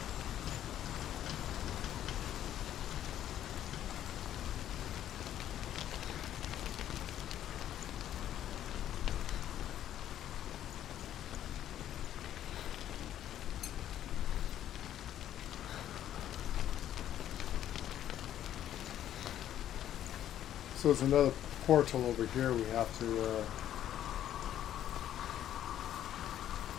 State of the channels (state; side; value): quieter; right; 11.3 dB